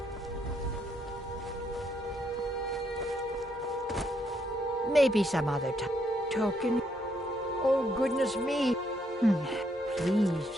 Maybe some other token. Oh, goodness me.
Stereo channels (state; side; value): normal; both; correlation 0.74